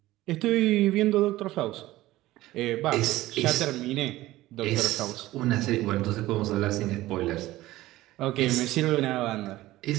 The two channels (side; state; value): left; quieter; 16.8 dB